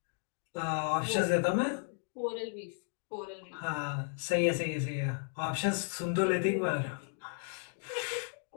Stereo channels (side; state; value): right; silent; 55 dB below the other